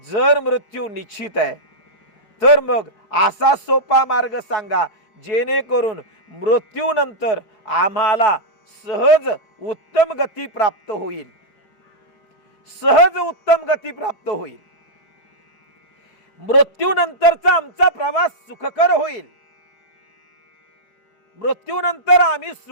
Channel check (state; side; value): late; right; 4.7 ms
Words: मृत्यू निश्चित आहे तर मग असा सोपा मार्ग सांगा जेणेकरून मृत्यूनंतर आम्हाला सहज उत्तम गती प्राप्त होईल, सहज उत्तम गती प्राप्त होईल, मृत्यूनंतरचा आमचा प्रवास सुखकर होईल, मृत्यूनंतर आम्ही